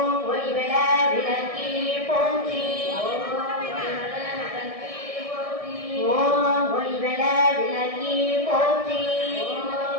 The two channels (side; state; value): left; late; 1.6 ms